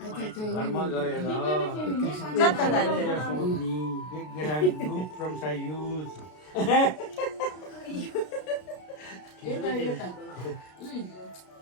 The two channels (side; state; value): right; late; 33 ms